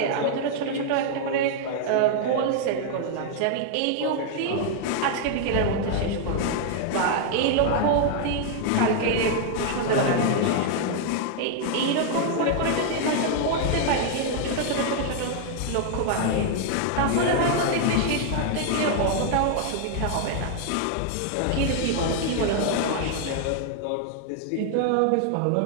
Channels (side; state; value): both; different; correlation 0.00